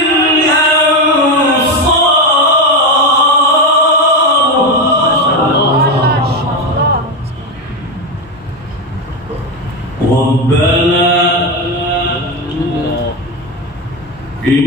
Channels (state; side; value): normal; both; correlation 0.13